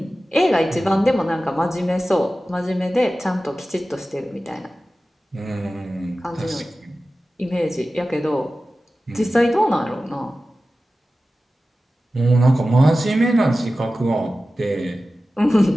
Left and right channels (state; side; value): normal; both; correlation 0.95